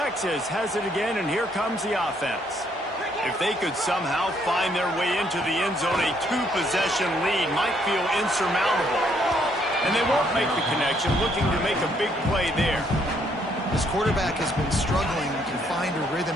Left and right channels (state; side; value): normal; both; correlation 0.69